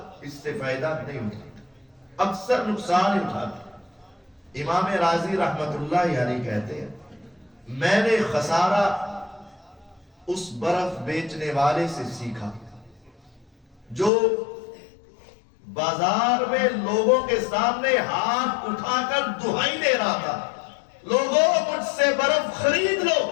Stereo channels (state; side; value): drops out; right; at 14.1 s